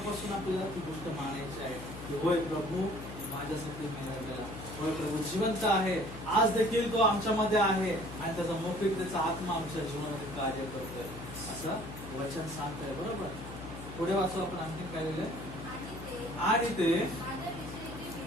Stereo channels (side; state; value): left; noise; hum, 11 dB below the sound